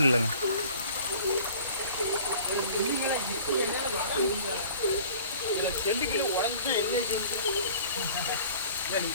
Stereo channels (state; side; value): inverted; both; correlation -0.48